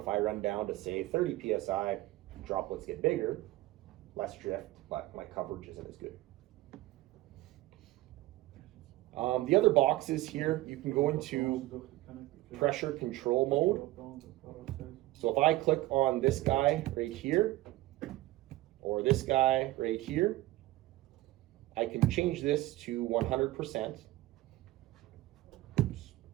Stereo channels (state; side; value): quieter; left; 17.6 dB